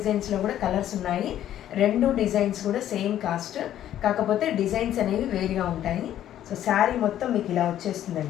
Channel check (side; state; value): right; quieter; 11.6 dB